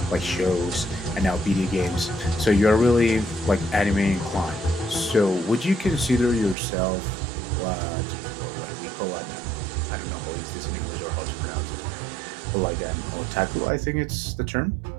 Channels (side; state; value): left; drops out; at 6.6 s